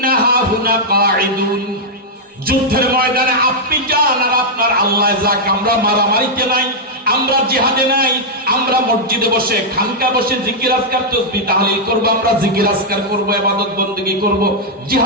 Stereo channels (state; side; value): normal; both; correlation -0.05